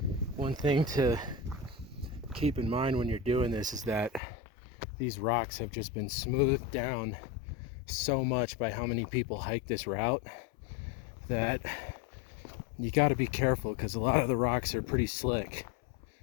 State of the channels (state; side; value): drops out; right; at 4.2 s